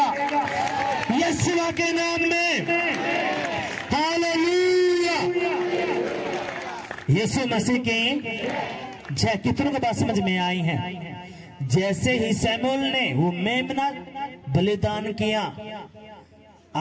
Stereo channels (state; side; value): identical; both; correlation 1.00